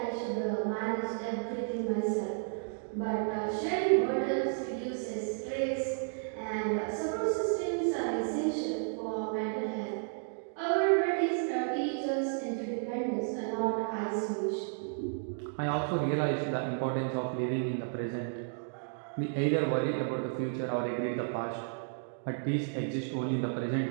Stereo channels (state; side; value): silent; left; digital silence